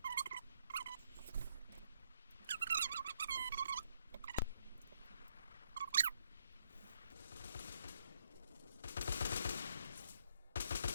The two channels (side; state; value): both; inverted; correlation -0.73